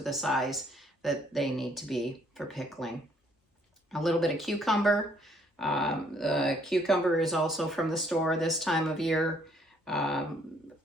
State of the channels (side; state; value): both; normal; correlation 0.65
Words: the size that they need to be for pickling. A little bit of cucumber. The cucumber is also from the store this time of year.